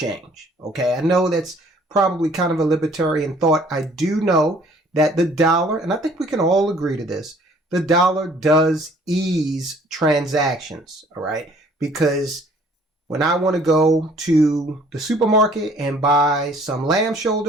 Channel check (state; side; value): normal; both; correlation 0.57